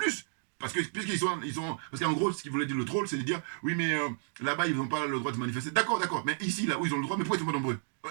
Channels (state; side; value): silent; left; digital silence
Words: Parce que, puisqu'ils sont. Parce qu'en gros, ce qu'il voulait dire le troll, c'est de dire, oui, mais là-bas, ils n'ont pas le droit de se manifester. D'accord, d'accord. Mais ici, là où ils ont le droit, mais pourquoi ils sont pas nombreux?